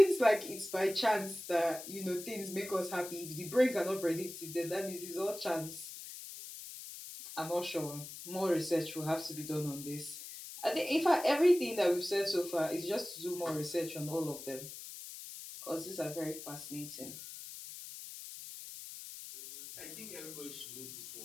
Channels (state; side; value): noise; left; hiss, 11 dB below the sound